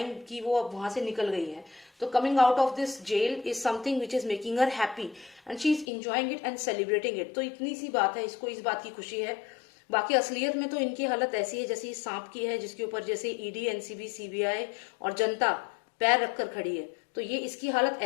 कि वो अब वहां से निकल गई है। तो coming out of this jail is something which is making her happy and she is enjoying it and celebrating it. तो इतनी सी बात है, इसको इस बात की खुशी है। बाकी असलियत में तो इनकी हालत ऐसी है जैसे इस सांप की है, जिसके ऊपर जैसे ईडी, एनसीबी, सीबीआई और जनता पैर रखकर खड़ी है। तो ये इसकी हालत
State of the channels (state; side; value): drops out; right; at 5.9 s